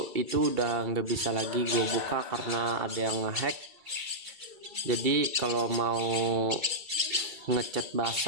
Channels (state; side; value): late; left; 2.3 ms